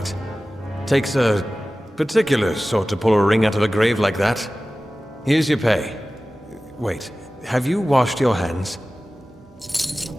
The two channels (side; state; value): both; normal; correlation 0.96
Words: takes a particular sort to pull a ring out of a grave like that. Here's your pay. Wait, have you washed your hands?